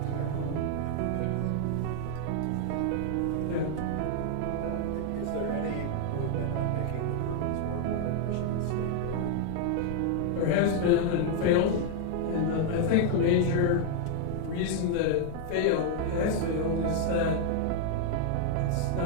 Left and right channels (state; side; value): different; both; correlation 0.00